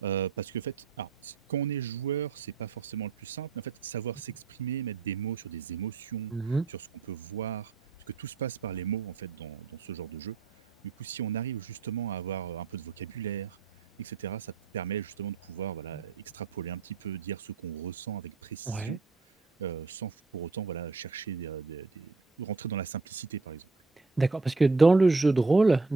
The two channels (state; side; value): quieter; left; 4.1 dB